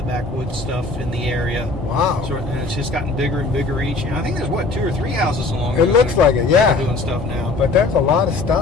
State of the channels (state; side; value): quieter; right; 3.5 dB